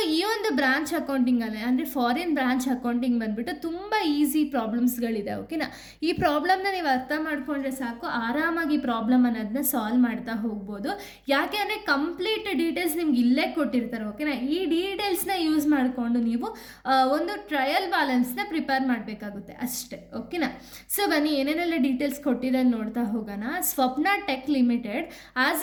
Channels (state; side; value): identical; both; correlation 1.00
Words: ಈ ಒಂದು ಬ್ರಾಂಚ್ ಅಕೌಂಟಿಂಗಲ್ಲಿ ಅಂದರೆ ಫಾರಿನ್ ಬ್ರಾಂಚ್ ಅಕೌಂಟಿಂಗ್ ಬಂದುಬಿಟ್ಟು ತುಂಬ ಈಸಿ ಪ್ರಾಬ್ಲಮ್ಸ್ಗಳು ಇದೆ. ಓಕೆನಾ? ಈ ಪ್ರಾಬ್ಲಮ್ನ ನೀವು ಅರ್ಥ ಮಾಡ್ಕೊಂಡ್ರೆ ಸಾಕು, ಆರಾಮಾಗಿ ಪ್ರಾಬ್ಲಮ್ ಅನ್ನೋದನ್ನ ಸಾಲ್ವ್ ಮಾಡ್ತಾ ಹೋಗ್ಬೋದು. ಯಾಕೆ ಅಂದರೆ ಕಂಪ್ಲೀಟ್ ಡೀಟೇಲ್ಸ್ ನಿಮ್ಗೆ ಇಲ್ಲೇ ಕೊಟ್ಟಿರ್ತಾರೆ. ಓಕೆನಾ? ಈ ಡೀಟೇಲ್ಸ್ನ ಯೂಸ್ ಮಾಡಿಕೊಂಡು ನೀವು ಒಂದು ಟ್ರಯಲ್ ಬ್ಯಾಲೆನ್ಸ್ನ ಪ್ರಿಪೇರ್ ಮಾಡಬೇಕಾಗುತ್ತೆ ಅಷ್ಟೇ. ಓಕೆನಾ? ಸೊ ಬನ್ನಿ, ಏನೇನೆಲ್ಲ ಡೀಟೇಲ್ಸ್ ಕೊಟ್ಟಿದೆ ನೋಡ್ತಾ ಹೋಗೋಣ. Swapna tech limited has